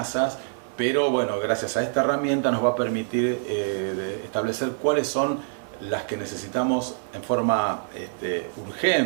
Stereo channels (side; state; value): left; silent; 55 dB below the other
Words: pero bueno, gracias a esta herramienta nos va a permitir establecer cuáles son las que necesitamos en forma